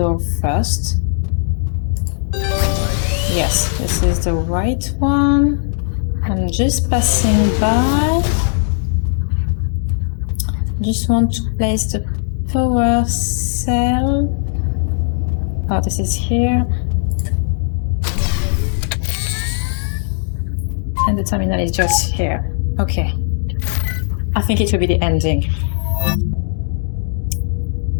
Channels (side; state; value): right; silent; digital silence